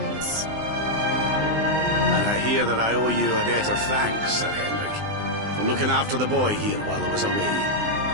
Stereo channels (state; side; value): late; left; 19 ms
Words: And I hear that I owe you a debt of thanks, Sir Henrik, for looking after the boy here while I was away.